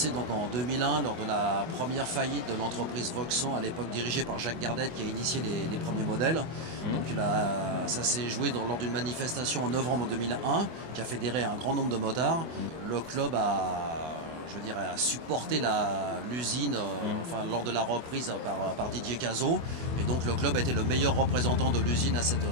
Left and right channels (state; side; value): late; left; 24 ms